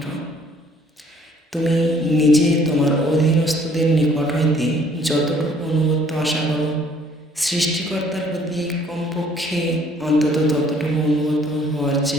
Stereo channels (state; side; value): normal; both; correlation 0.60